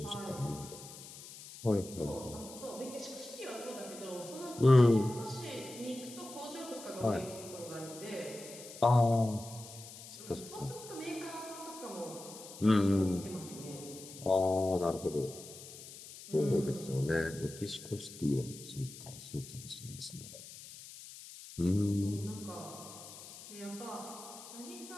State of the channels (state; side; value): noise; left; hiss, 15 dB below the sound